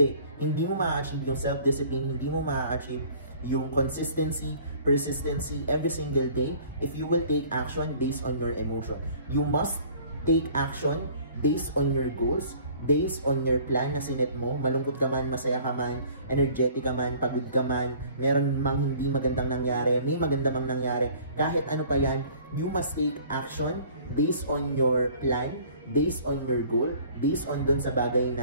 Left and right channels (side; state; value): both; inverted; correlation -0.51